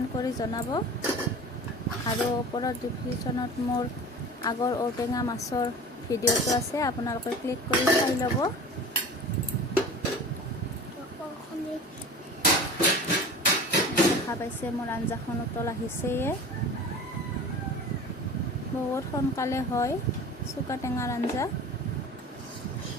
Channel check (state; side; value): normal; both; correlation 0.38